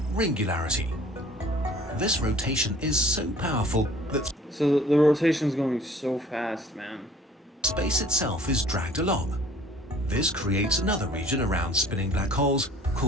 ringularity. This rotation is so powerful that So the rotation's going so fast, man. space itself is dragged along. This creates another region around spinning black holes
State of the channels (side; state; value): both; normal; correlation 0.52